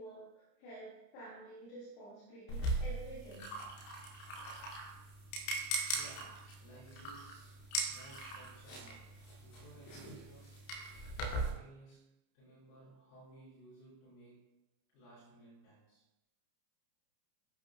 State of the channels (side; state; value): right; late; 30 ms